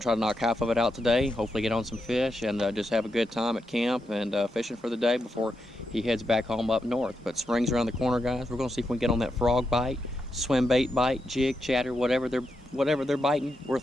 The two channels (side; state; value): both; normal; correlation 0.85